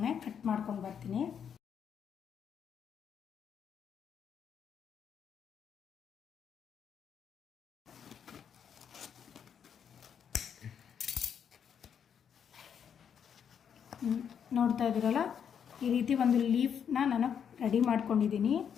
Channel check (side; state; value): right; quieter; 7.9 dB